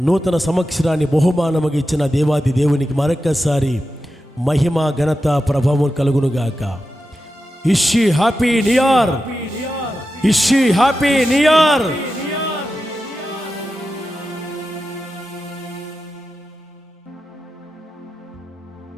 నూతన సంవత్సరాన్ని బహుమానముగా ఇచ్చిన దేవాది దేవునికి మరొక్కసారి మహిమ, ఘనత, ప్రభావం కలుగునుగాక. ఇషి హ్యాపీ న్యూ ఇయర్, ఇషి హ్యాపీ న్యూ ఇయర్.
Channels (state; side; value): normal; both; correlation 0.91